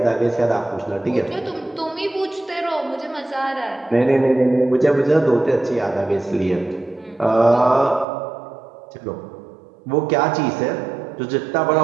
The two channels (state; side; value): drops out; left; at 8.1 s